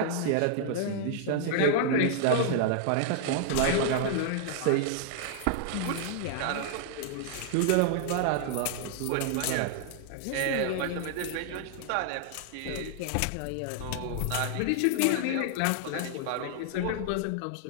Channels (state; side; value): different; both; correlation -0.01